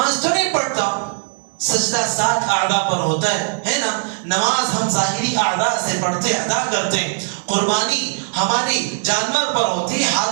تو نہیں پڑھتا، سجدہ 7 اعضاء پر ہوتا ہے نا، نماز ہم ظاہری اعضاء سے پڑھتے ادا کرتے ہیں، قربانی ہماری جانور پر ہوتی ہے،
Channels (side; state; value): left; silent; digital silence